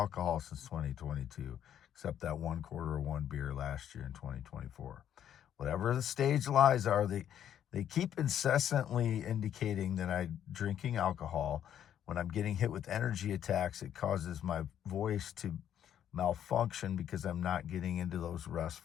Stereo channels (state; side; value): quieter; right; 10.1 dB